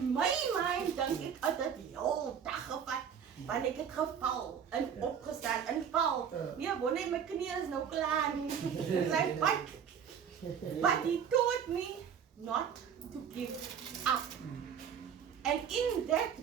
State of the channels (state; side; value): quieter; left; 7.8 dB